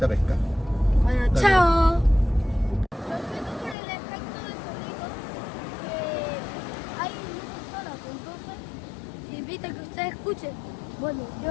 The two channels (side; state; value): right; drops out; at 3.8 s